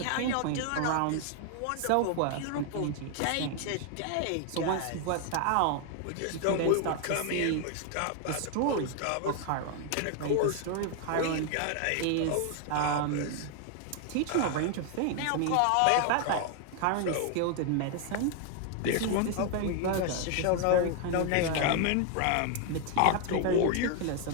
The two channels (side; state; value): both; different; correlation 0.00